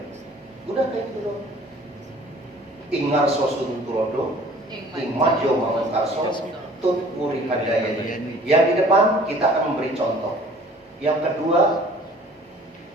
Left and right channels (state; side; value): normal; both; correlation 0.51